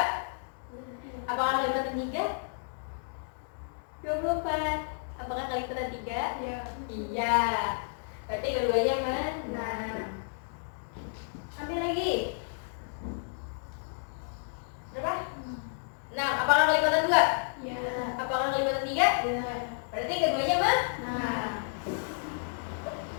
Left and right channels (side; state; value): right; silent; digital silence